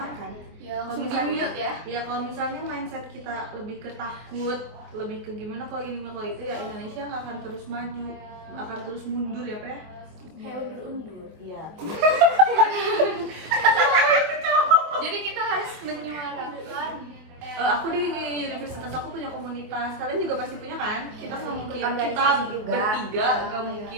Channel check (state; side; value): late; left; 24 ms